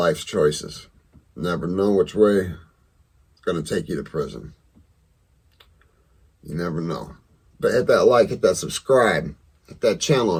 choices. Never know which way it's going to take you to prison. You never know. But hit that like, hit that subscribe, hit that channel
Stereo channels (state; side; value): identical; both; correlation 1.00